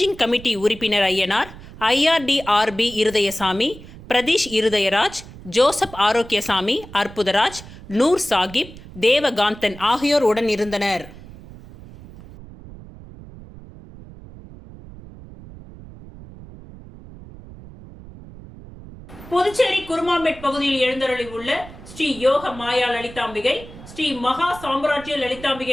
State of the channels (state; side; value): noise; right; rumble, 17 dB below the sound